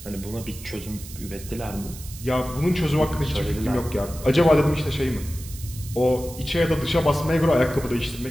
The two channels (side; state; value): right; noise; hiss, 15 dB below the sound